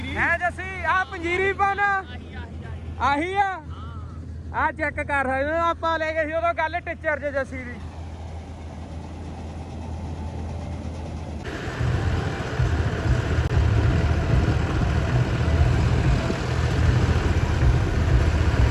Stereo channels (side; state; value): both; identical; correlation 1.00